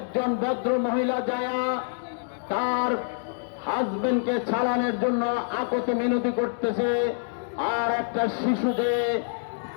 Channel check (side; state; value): right; silent; digital silence